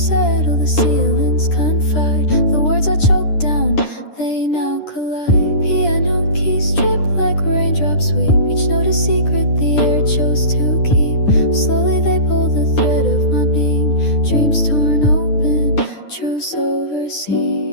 settle, the ceilings confide. The words I choke down, they now collide. Piano keys drip like raindrops sweep. Each note a secret the air chose to keep. Slowly they pull the thread of my being. Dreams torn open, truths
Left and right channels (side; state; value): right; late; 10 ms